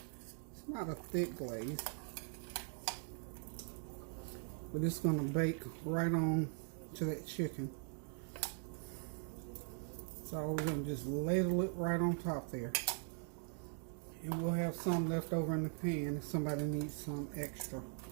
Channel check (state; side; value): silent; left; 50 dB below the other